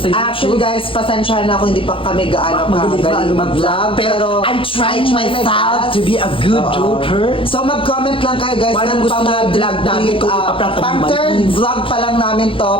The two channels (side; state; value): right; late; 0.26 ms